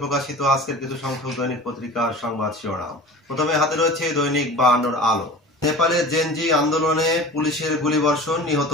প্রকাশিত আজকের কিছু সংখ্যক দৈনিক পত্রিকার সংবাদ শিরোনাম। প্রথমে হাতে রয়েছে দৈনিক 52 আলো। নেপালের জেনজি আন্দোলনে পুলিশের গুলিবর্ষণ, নিহত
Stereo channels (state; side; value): normal; both; correlation 0.38